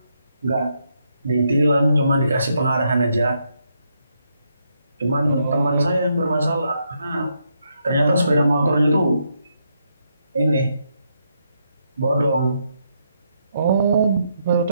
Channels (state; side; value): inverted; both; correlation -0.78